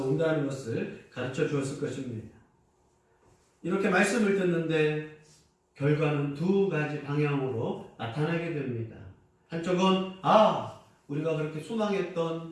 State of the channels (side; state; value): both; identical; correlation 1.00